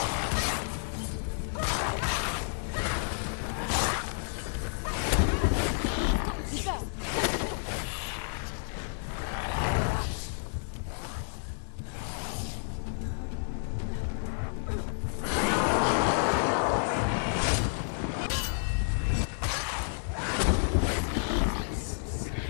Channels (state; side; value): silent; right; 58 dB below the other